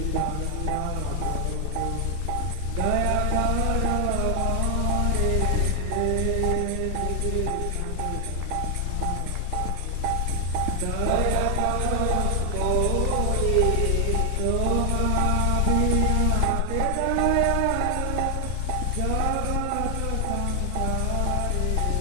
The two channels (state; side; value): different; both; correlation 0.00